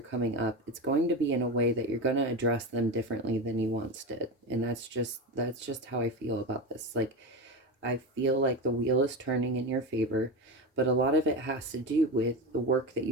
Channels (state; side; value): normal; both; correlation 0.21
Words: coming up, it's going to be in a way that you're going to address them differently than you once did. And that's just how I feel about this. Like, I feel like the wheel is turning in your favor, but a lot of it has to do with the work that